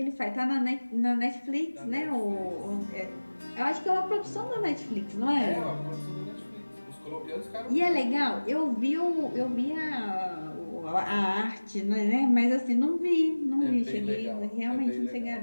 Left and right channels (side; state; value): both; inverted; correlation -1.00